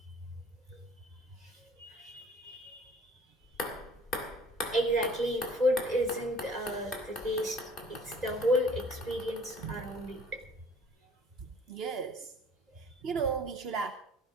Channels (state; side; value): normal; both; correlation 0.52